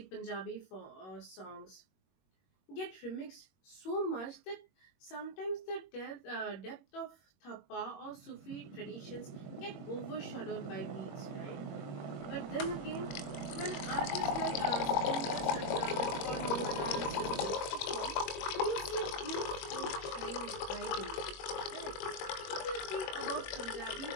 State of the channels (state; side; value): late; right; 21 ms